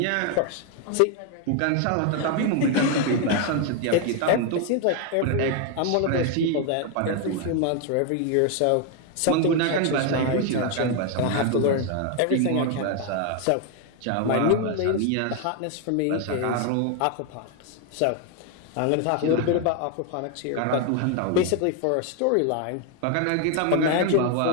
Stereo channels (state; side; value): different; both; correlation 0.01